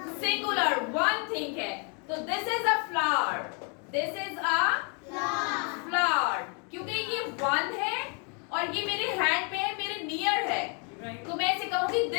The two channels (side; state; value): right; quieter; 37.3 dB